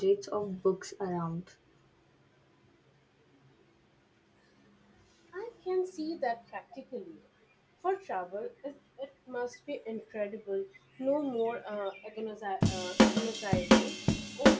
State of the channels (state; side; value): identical; both; correlation 1.00